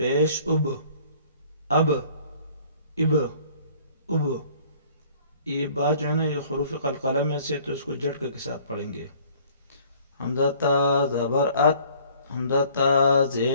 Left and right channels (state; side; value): inverted; both; correlation -0.55